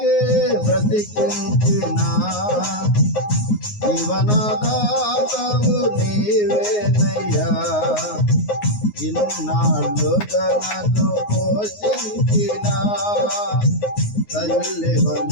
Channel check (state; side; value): late; right; 9.6 ms